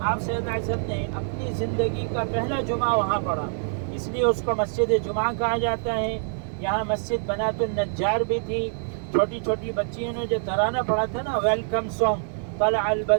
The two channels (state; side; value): silent; left; 61 dB below the other